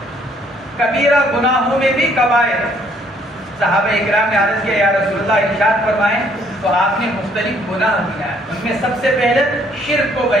کبیرہ گناہوں میں بھی کبائر۔ صحابہ اکرام نے عرض کیا یا رسول اللہ ارشاد فرمائیں، تو آپ نے مختلف گناہ دیا، ان میں سب سے پہلے شرک کو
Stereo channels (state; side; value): normal; both; correlation 0.64